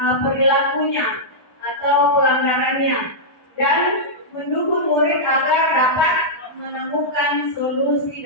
perilakunya atau pelanggarannya dan mendukung murid agar dapat menemukan solusi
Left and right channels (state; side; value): late; right; 1.2 ms